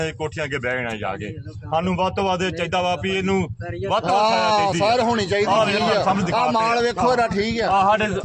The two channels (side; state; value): both; identical; correlation 1.00